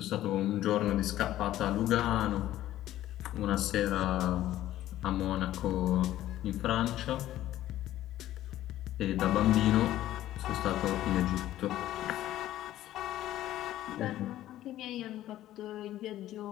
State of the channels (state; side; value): quieter; right; 13.7 dB